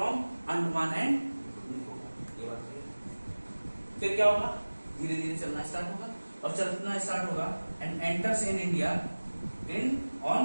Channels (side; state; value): both; inverted; correlation -1.00